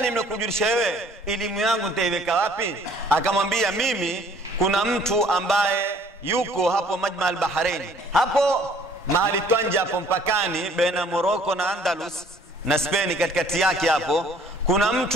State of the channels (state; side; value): normal; both; correlation 0.57